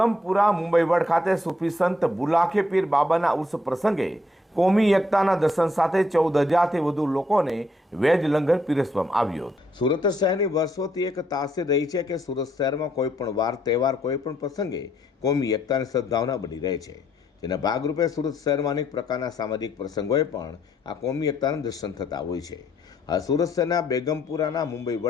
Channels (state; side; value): normal; both; correlation 0.72